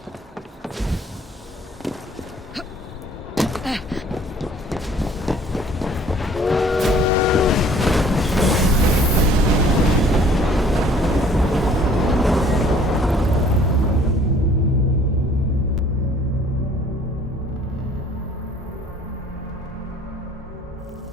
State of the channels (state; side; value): normal; both; correlation 0.55